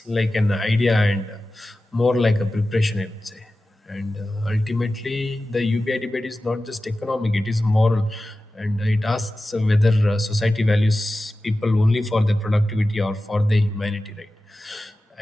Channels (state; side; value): normal; both; correlation 0.94